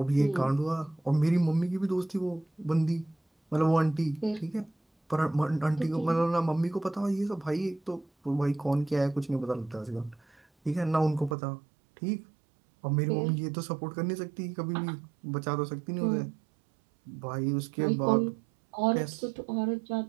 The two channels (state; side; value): drops out; left; at 11.4 s